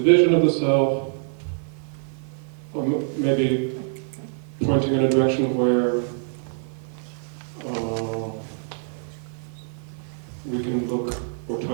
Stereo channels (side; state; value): left; silent; digital silence